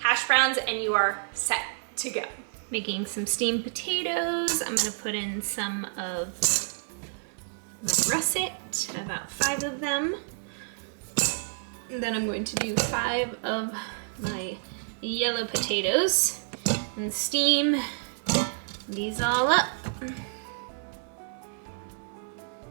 browns, and you are set to go. Making some steamed potatoes. I'm gonna put in some of my russet, about 5 of them. And then I'm going to do 5 of my yellow potatoes and steam these all up.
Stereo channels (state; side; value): silent; left; digital silence